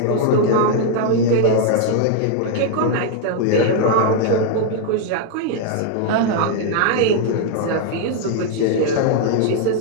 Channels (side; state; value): both; different; correlation 0.00